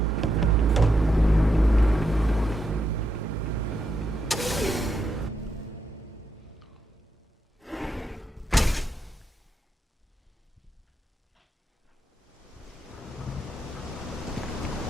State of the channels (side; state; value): both; normal; correlation 0.82